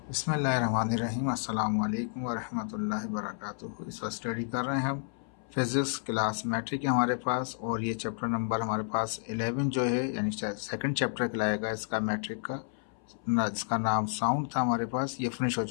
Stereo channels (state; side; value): silent; right; 57 dB below the other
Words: बिस्मिल्लाहिर्रहमानिर्रहीम। अस्सलाम वालेकुम वरहमतुल्लाहि वबरकातुहू। इस वक्त स्टडी कर रहे हैं हम फिजिक्स क्लास मैट्रिक है हमारे पास, और ये चैप्टर नंबर हमारे पास 11 जो है, यानी सेकंड चैप्टर कहलाएगा इसका मैट्रिक का, जिसका नाम साउंड था हमारे पास। ये फिनिश हो